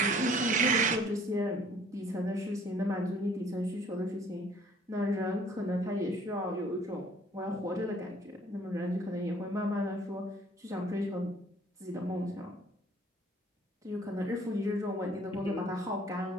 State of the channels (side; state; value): both; normal; correlation 0.56